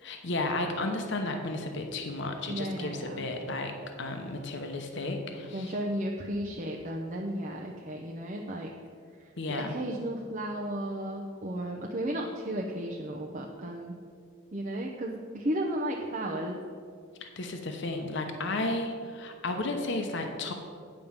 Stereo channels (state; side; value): normal; both; correlation 0.34